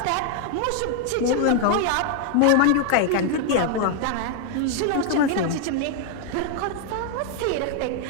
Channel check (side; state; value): both; different; correlation 0.00